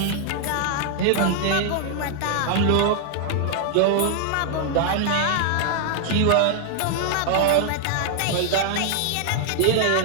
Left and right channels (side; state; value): both; different; correlation 0.00